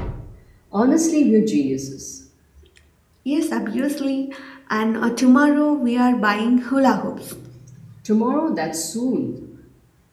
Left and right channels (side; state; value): both; identical; correlation 1.00